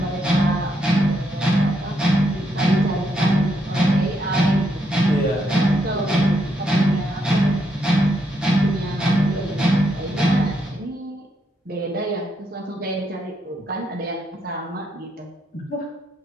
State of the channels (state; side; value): normal; both; correlation 0.77